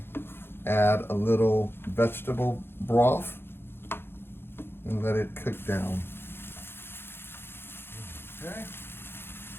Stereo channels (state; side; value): late; right; 0.11 ms